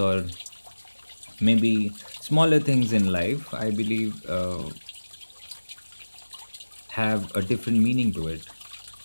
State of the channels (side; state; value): both; inverted; correlation -1.00